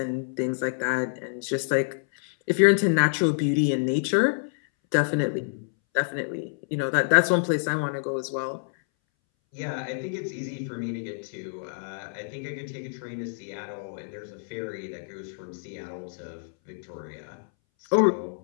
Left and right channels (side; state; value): right; silent; 60 dB below the other